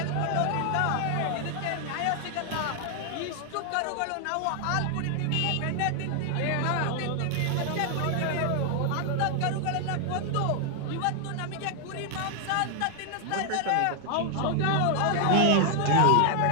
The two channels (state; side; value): different; both; correlation 0.00